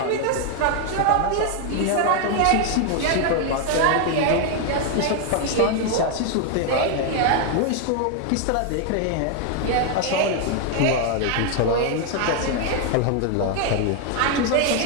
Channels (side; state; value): both; different; correlation 0.01